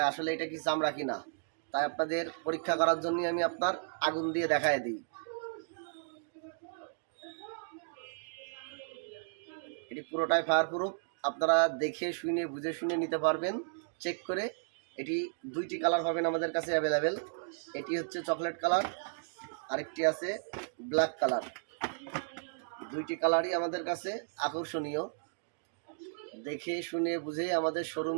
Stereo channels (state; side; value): silent; left; digital silence